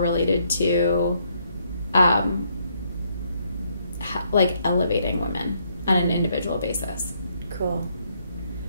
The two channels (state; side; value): inverted; both; correlation -0.72